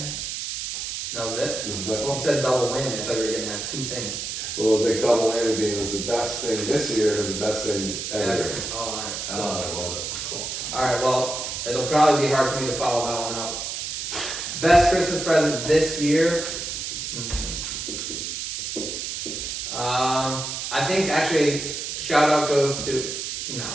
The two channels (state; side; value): noise; right; hiss, 5 dB below the sound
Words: That was it? This is the best You one. said double whammy. I thought you were gonna have two things. Well, it was like double whammy being it was the best thing this year. It was the best thing ever. Oh, alright. I love it. Cool. Alright, well, it'll probably be hard for me to follow that one up. Best Christmas present this year? I think actually, shout out goes to,